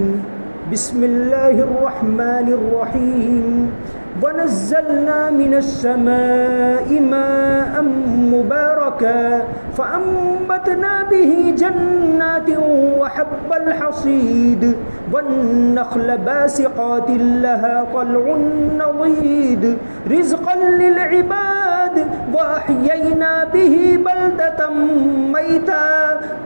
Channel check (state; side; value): inverted; both; correlation -1.00